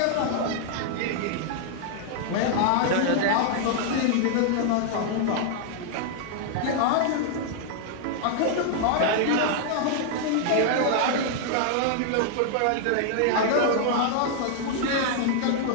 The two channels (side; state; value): both; different; correlation 0.00